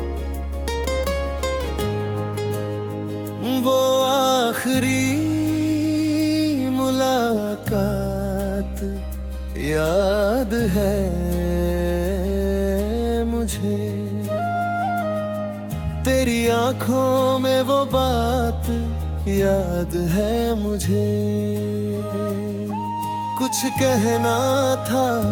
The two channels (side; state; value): both; identical; correlation 1.00